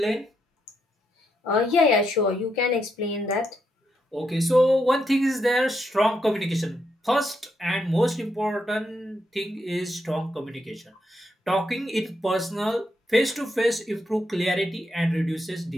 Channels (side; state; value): both; normal; correlation 0.80